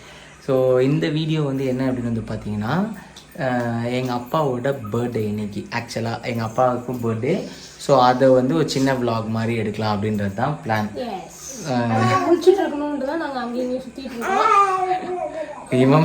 ஸோ இந்த வீடியோ என்ன அப்படின்னு பார்த்தீங்கன்னா, எங்கள் அப்பாவோட பர்த்டே இன்னைக்கு. ஆக்சுவலாக எங்கள் அப்பாவுக்கும் பர்த்டே. ஸோ அதை ஒரு சின்ன விலாக் மாதிரி எடுக்கலாம் அப்படின்றது தான் பிளான்.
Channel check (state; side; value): identical; both; correlation 1.00